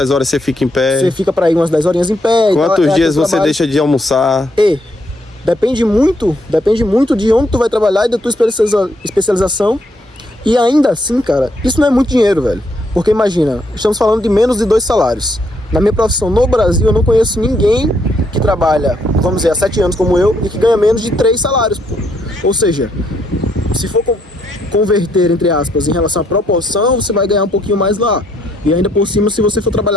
horas você fica em pé? Você fica pra ir umas 10 horinhas em pé. Quantos dias você deixa de almoçar? Depende muito de onde tu vai trabalhar e da tua especialização. E ainda assim, cara, isso não é muito dinheiro, velho. Porque imagina, estamos falando de menos de 2 salários. Na minha profissão no Brasil, eu não conheço ninguém que trabalha, vamos dizer, há 7 anos como eu, e que ganha menos de 3 salários, pô. Ou seja, se for converter, entre aspas, em relação à proporção, você vai ganhar um pouquinho mais lá. E ainda por cima, se você for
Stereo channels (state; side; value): normal; both; correlation 0.74